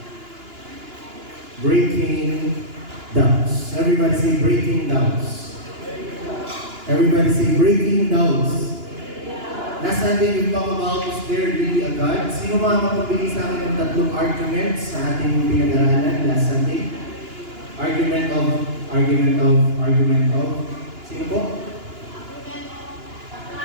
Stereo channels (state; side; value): late; left; 2.9 ms